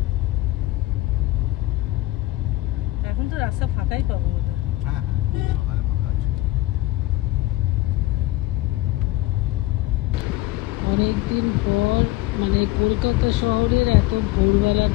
এখন তো রাস্তা ফাঁকাই পাবো। অনেকদিন পর মানে কলকাতা শহরের এত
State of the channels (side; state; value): right; quieter; 17.7 dB